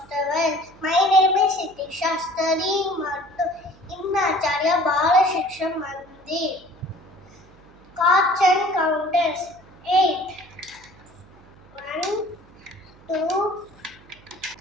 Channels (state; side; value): noise; right; hum, 25 dB below the sound